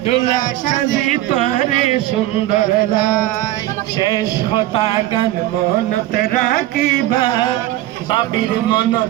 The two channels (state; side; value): quieter; left; 15.3 dB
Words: দুলা সাজি তোরে সুন্দর লাই শেষ হতা গান মনতে রাখিবা বাবির